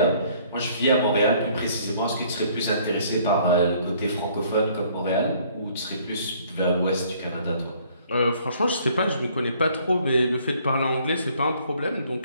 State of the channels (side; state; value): both; inverted; correlation -0.60